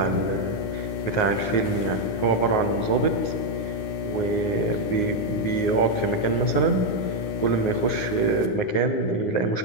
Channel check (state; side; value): late; right; 10 ms